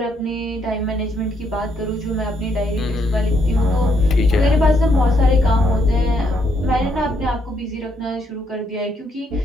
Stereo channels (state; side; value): normal; both; correlation 0.74